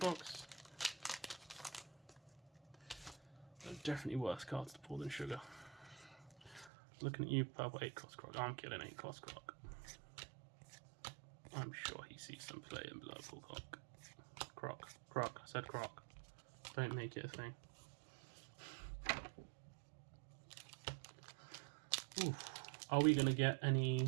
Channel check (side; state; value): left; drops out; at 6.7 s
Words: There are definitely worse cards to pull than sugar. Looking at you, purple 8-cost croc. I'm kidding, 8-cost croc. I'm sure he sees some play in purple croc. Croc. I said croc. Don't make it a thing. Ooh. Are we going to get any